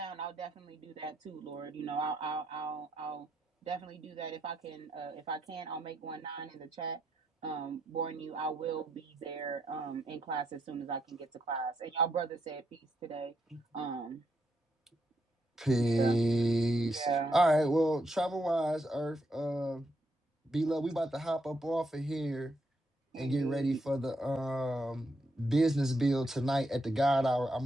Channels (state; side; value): normal; both; correlation 0.79